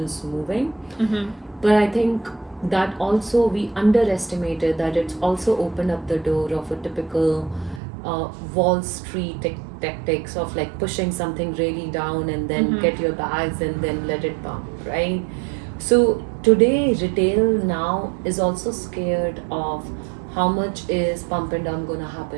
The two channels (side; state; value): left; drops out; at 7.8 s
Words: moving. Mm-hmm. But I think that also we underestimated that it's also opened up the door of a typical Wall Street tactics of like pushing something really down and then get your bags and then let it pump, right? So today, retail now is also scared of how much is pump and dump going to